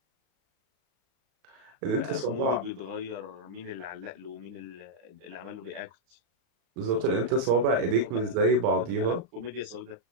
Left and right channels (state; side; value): late; left; 35 ms